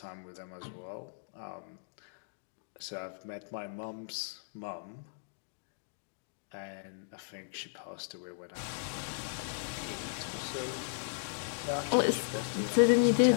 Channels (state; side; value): silent; right; digital silence